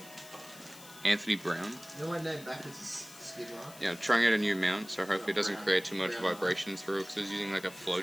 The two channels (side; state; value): left; noise; hiss, 18 dB below the sound